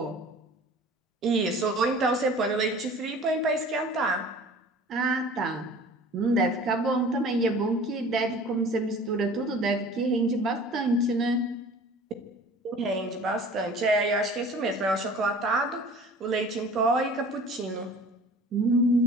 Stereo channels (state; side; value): normal; both; correlation 0.44